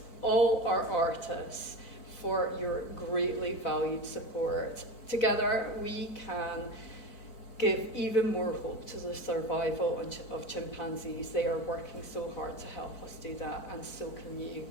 all our artists for your greatly valued support. Together we can give even more hope to the survival of chimpanzees. They are working so hard to help us do that, and so can you.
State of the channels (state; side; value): late; right; 4.5 ms